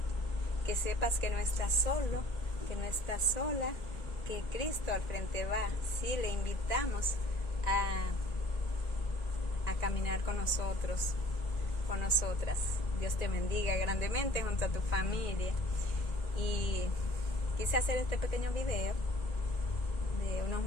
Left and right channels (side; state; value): right; late; 1.9 ms